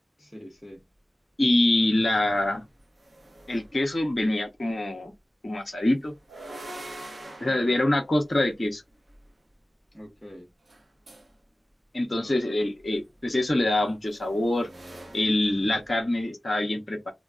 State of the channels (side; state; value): both; normal; correlation 0.96